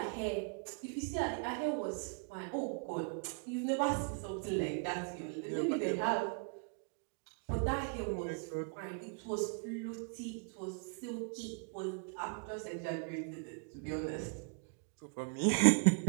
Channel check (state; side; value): quieter; left; 38.2 dB